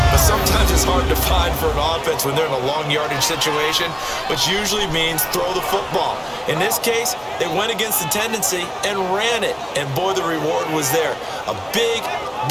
but sometimes it's hard to find for an offense when they're in a long yardage situation, which usually means throw the football. In this case, they went against the tendency and ran it, and boy, the reward was there. A big,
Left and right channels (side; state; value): both; identical; correlation 1.00